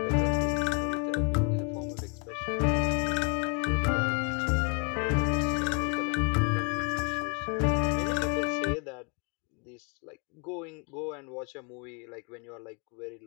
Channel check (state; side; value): quieter; right; 35.1 dB